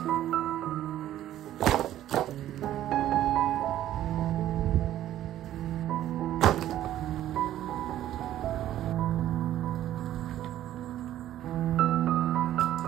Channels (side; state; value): left; quieter; 12.7 dB